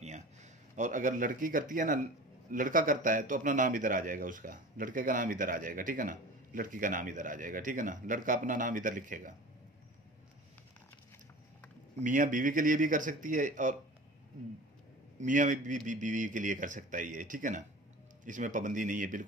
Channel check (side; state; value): both; normal; correlation 0.38